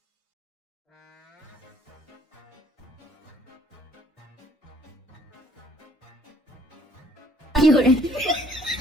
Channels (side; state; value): both; normal; correlation 0.61